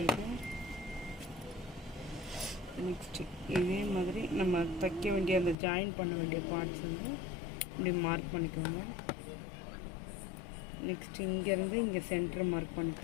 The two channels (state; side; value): drops out; right; at 5.6 s